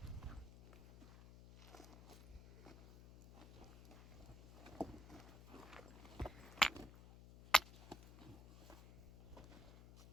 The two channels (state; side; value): noise; left; hum, 15 dB below the sound